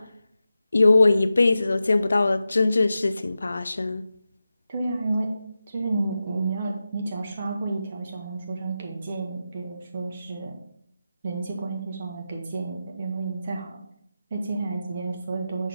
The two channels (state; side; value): inverted; both; correlation -0.92